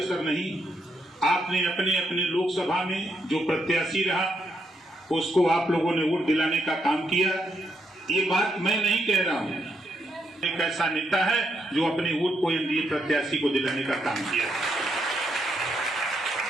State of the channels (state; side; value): normal; both; correlation 0.78